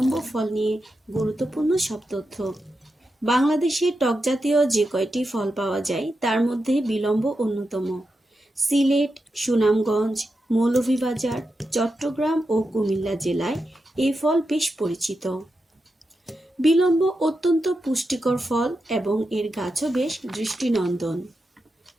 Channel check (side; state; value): both; normal; correlation 0.88